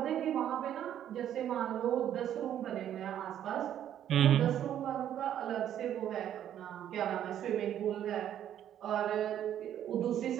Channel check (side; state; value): left; quieter; 10.6 dB